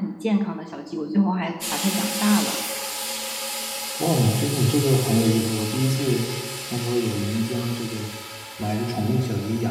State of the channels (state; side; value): identical; both; correlation 1.00